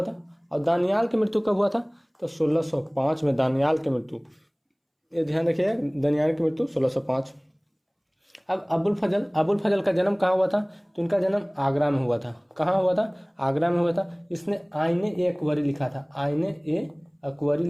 था? और दानियाल की मृत्यु कब हुआ था? तो 1605 में दानियाल की मृत्यु। ये ध्यान रखिएगा, दानियाल की मृत्यु 1605। अब अबुल फजल का जन्म कहाँ हुआ था? तो इनका जन्म आगरा में हुआ था। कहाँ हुआ था? आगरा में हुआ था। इसने आईने-ए-अकबरी लिखा था। आईने-ए-अकबरी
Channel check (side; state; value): both; identical; correlation 1.00